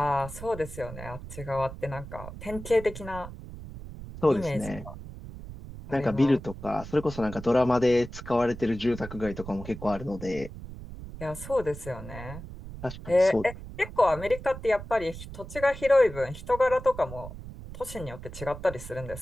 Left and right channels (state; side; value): noise; right; rumble, 12 dB below the sound